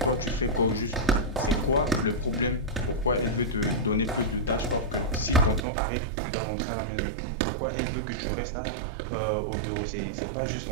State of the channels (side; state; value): left; drops out; at 5.7 s